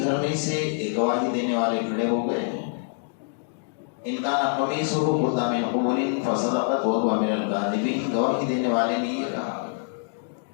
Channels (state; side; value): silent; right; digital silence